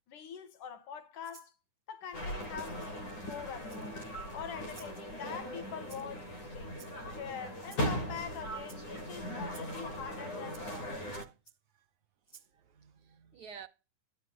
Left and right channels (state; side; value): late; right; 9.8 ms